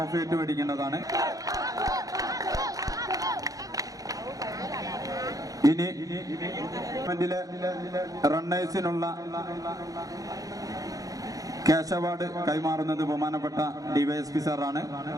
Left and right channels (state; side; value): late; left; 0.17 ms